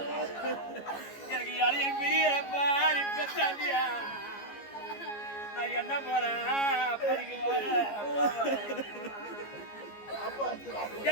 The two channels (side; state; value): right; late; 15 ms